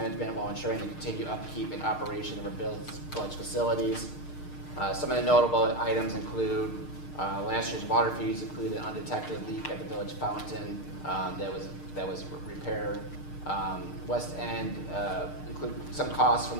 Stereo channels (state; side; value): late; right; 6.6 ms